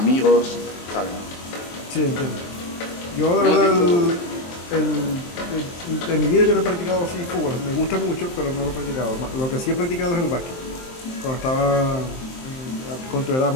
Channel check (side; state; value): right; late; 23 ms